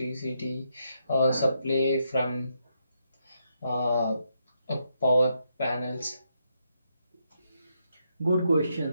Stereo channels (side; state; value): both; inverted; correlation -0.79